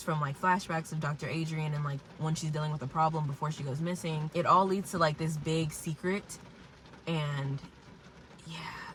from like flashbacks of Dr. Adrian and like when she's dealing with a problem before she goes missing. It all leads to like this big secret, and yeah,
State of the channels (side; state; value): both; identical; correlation 1.00